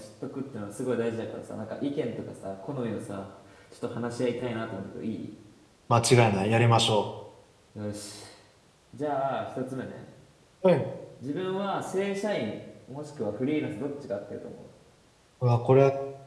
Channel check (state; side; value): identical; both; correlation 1.00